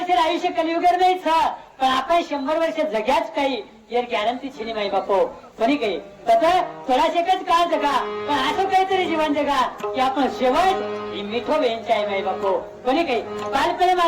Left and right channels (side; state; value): both; identical; correlation 1.00